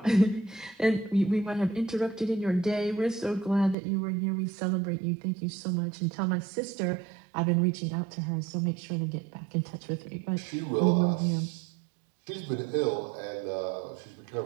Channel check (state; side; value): drops out; left; at 3.8 s